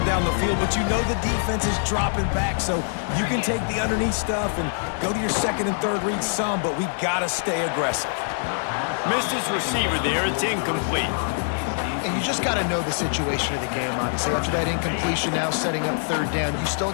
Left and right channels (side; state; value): right; silent; digital silence